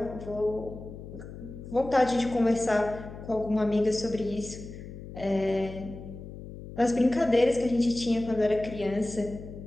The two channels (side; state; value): left; noise; hum, 13 dB below the sound